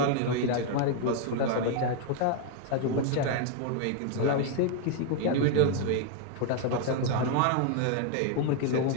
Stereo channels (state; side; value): different; both; correlation 0.00